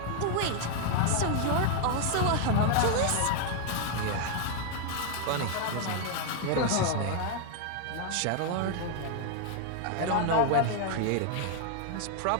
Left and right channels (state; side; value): different; both; correlation 0.00